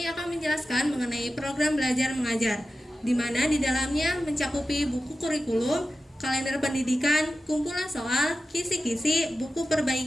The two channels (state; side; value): normal; both; correlation 0.93